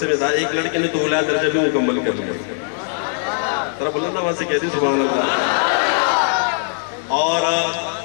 میں تھا، ایک لڑکے نے تو اعلیٰ درجہ بھی مکمل کر لیا۔ ذرا بلند آواز سے کہتے سبحان اللہ۔ اور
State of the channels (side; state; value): right; silent; digital silence